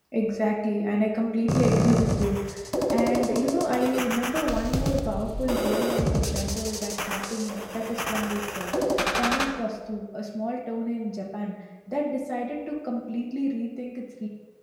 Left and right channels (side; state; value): both; identical; correlation 1.00